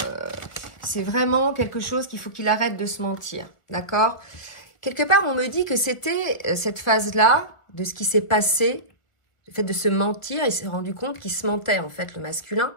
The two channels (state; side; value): late; right; 1.4 ms